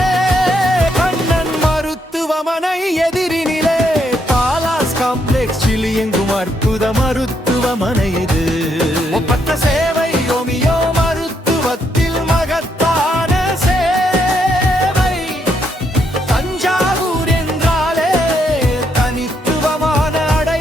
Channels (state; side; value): normal; both; correlation 0.76